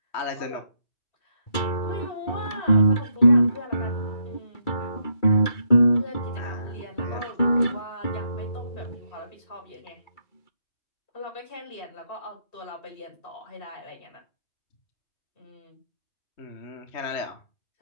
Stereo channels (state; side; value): late; right; 2.3 ms